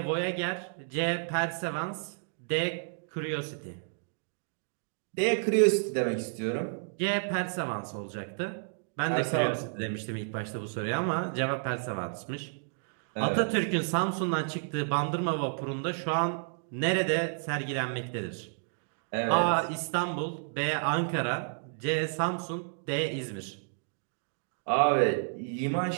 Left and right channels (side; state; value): left; silent; digital silence